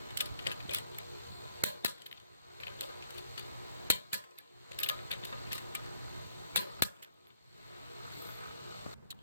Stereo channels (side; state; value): both; inverted; correlation -0.71